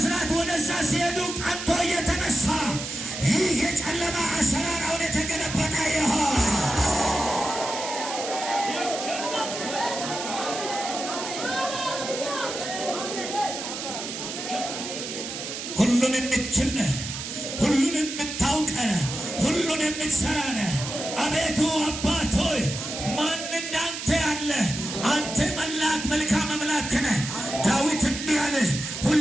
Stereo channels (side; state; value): right; noise; hiss, 7 dB below the sound